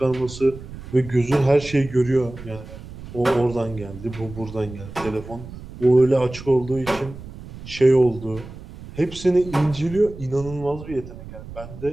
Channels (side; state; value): right; noise; rumble, 14 dB below the sound